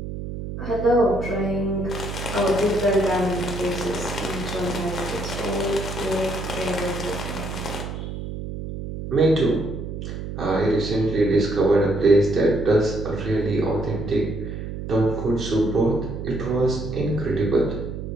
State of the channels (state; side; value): noise; right; hum, 7 dB below the sound